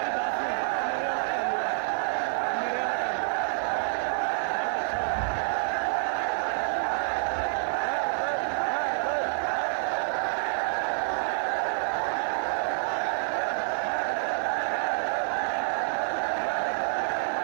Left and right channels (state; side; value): silent; left; 56 dB below the other